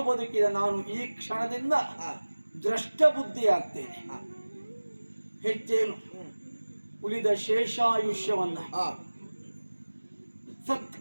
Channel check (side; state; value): both; inverted; correlation -1.00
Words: ಬದುಕಿದ ನಾನು ಈ ಕ್ಷಣದಿಂದ ದ್ರಷ್ಟ ಬುದ್ಧಿ ಆಗ್ತೇನೆ. ಹೆಚ್ಚೇನು, ಉಳಿದ ಶೇಷಾಯುಷ್ಯವನ್ನ